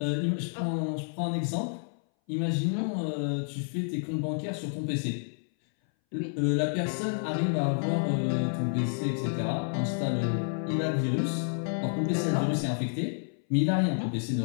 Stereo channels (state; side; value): silent; right; 58 dB below the other